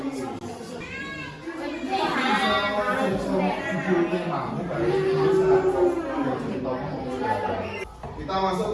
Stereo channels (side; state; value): both; identical; correlation 1.00